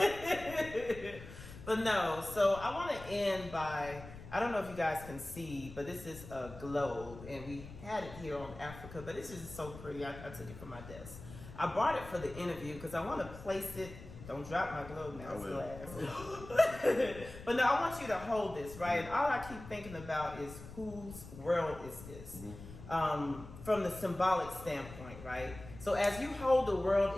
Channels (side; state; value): left; noise; rumble, 14 dB below the sound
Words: But no, so I want to end by, I don't know if you guys can see, but this is a globe, and we had it here on Africa, but this is so pretty. I took it from my desk. I brought it for the interview because I want to place it. Don't drop my globe now, it's glass. But no, I want you to hold this, right? And all I keep thinking about is whose world is this? From the symbolic standpoint, right? So as you hold the